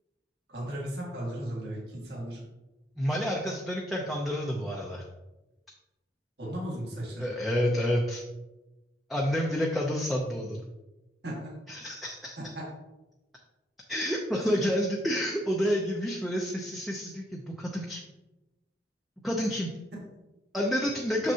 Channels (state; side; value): normal; both; correlation 0.73